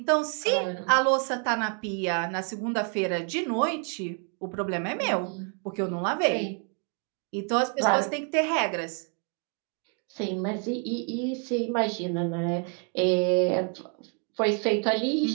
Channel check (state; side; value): quieter; left; 39.4 dB